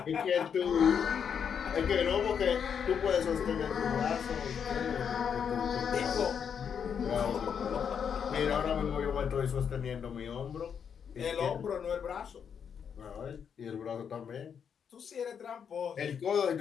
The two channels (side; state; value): right; quieter; 7.4 dB